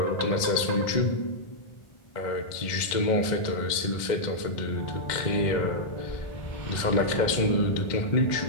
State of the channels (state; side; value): late; right; 2.0 ms